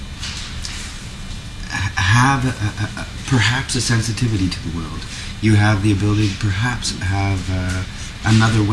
have perhaps a sensitivity to the world. You have the ability to perhaps have another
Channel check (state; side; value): identical; both; correlation 1.00